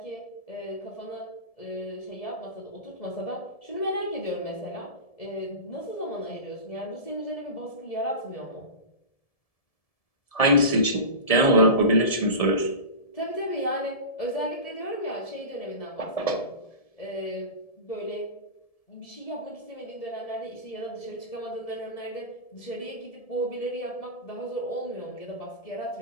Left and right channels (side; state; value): right; late; 1.7 ms